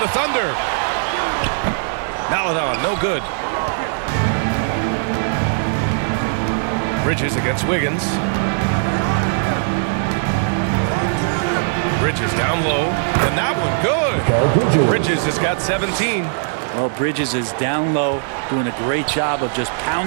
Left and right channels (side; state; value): left; silent; digital silence